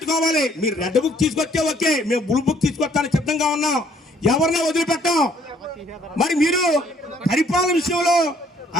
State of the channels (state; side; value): normal; both; correlation 0.63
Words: మీరు రెడ్ బుక్ తీసుకొస్తే ఓకే, మేము బ్లూ బుక్ తీసుకొస్తానికి సిద్ధంగా ఉన్నాం. ఎవరినే వదిలిపెట్టాం. మరి మీరు పరిపాలన విషయంలో